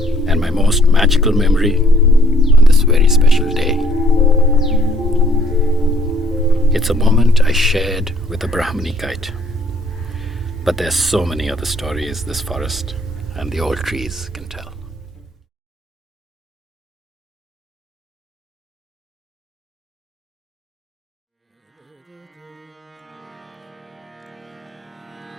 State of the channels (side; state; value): both; normal; correlation 0.62